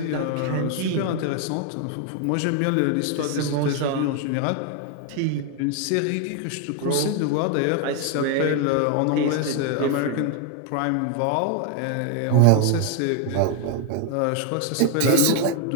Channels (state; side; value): different; both; correlation 0.01